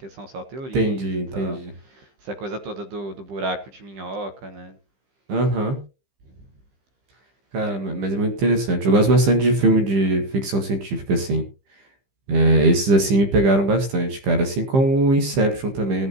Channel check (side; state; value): left; late; 15 ms